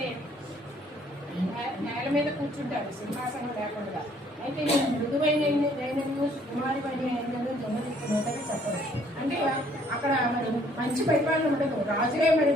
నేల మీద కూర్చుంటారు సింహాసనం లేకుండా. అయితే నేను మృదువైన కుమారి పని అయినను దొంగలిస్తున్నదని చెప్పవచ్చు. అంటే అక్కడ మరి మంచి పరిపాలన ఉండదు. రాజులే మరి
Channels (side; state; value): both; normal; correlation 0.62